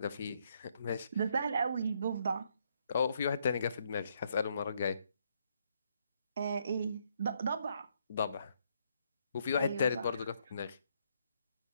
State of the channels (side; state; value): both; inverted; correlation -0.73